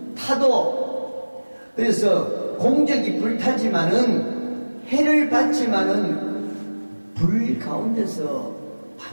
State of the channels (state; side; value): inverted; both; correlation -1.00